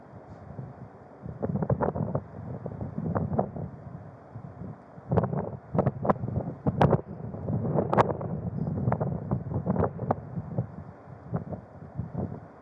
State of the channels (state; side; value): identical; both; correlation 1.00